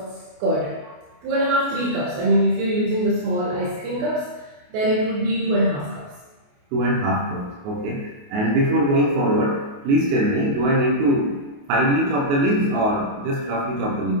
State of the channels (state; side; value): late; left; 28 ms